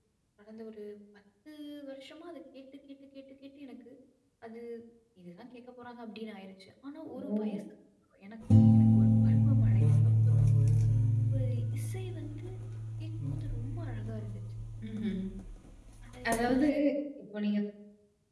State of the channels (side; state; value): both; identical; correlation 1.00